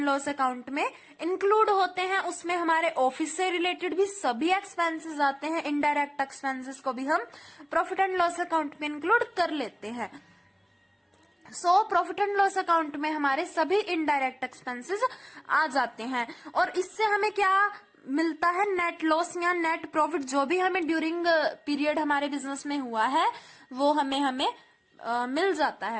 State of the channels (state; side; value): identical; both; correlation 1.00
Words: लॉस अकाउंट में इंक्लूड होते हैं। उसमें हमारे ऑफिस से रिलेटेड भी सभी एक्सपेंसेस आते हैं, इनडायरेक्ट एक्सपेंसेस को भी हम प्रॉफिट एंड लॉस अकाउंट में इंक्लूड कर लेते हैं। प्रॉफिट एंड लॉस अकाउंट में हमारे सभी इनडायरेक्ट एक्सपेंसेस आ जाते हैं, और इससे हमें क्या मिलता है? नेट लॉस या नेट प्रॉफिट, जो भी हमें ड्यूरिंग पीरियड हमारे बिजनेस में हुआ है वो हमें मिल जाता